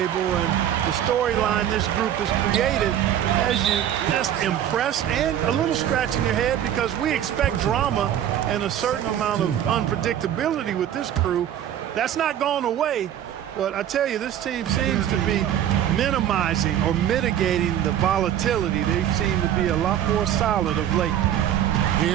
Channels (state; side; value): quieter; left; 10.6 dB